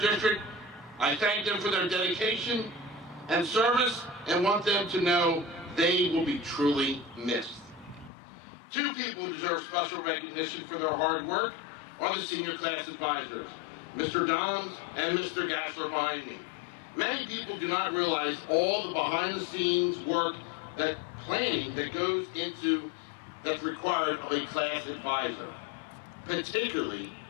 I thank them for their dedication and service and want them to know they will be truly missed. Two people who deserve special recognition for their hard work are the senior class advisors, Mr. Doms and Mr. Gassler behind me. Many people do not realize all the behind-the-scenes work, that planning that goes into, that's required of a class advisor, particularly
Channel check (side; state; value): right; drops out; at 8.1 s